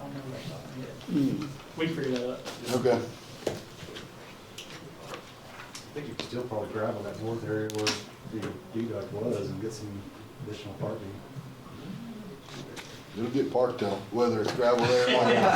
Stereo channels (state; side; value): identical; both; correlation 1.00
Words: remember that top of my head. Mm. We can figure that out. Okay. I think you could still probably gravel that north area where the deduct was and get some additional parking. It'll get parked though, whether it's gravel there or